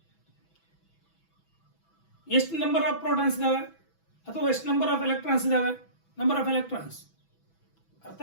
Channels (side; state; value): right; late; 6.1 ms